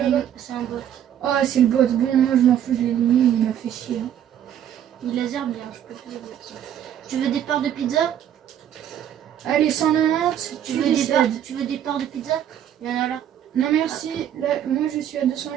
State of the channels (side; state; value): left; quieter; 10.2 dB